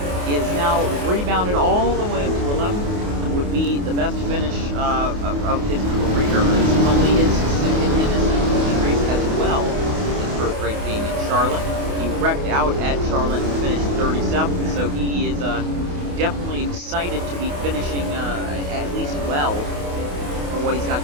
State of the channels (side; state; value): left; late; 28 ms